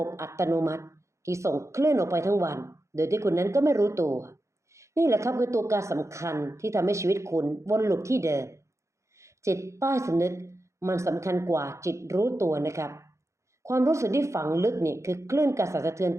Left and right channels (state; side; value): late; left; 0.14 ms